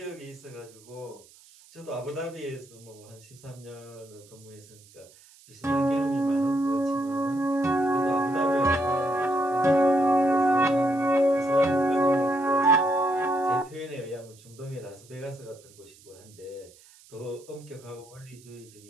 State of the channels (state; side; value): noise; right; hiss, 25 dB below the sound